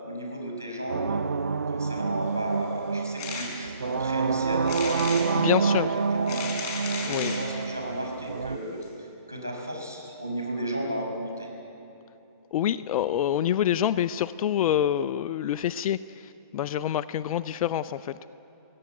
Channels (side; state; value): both; inverted; correlation -0.45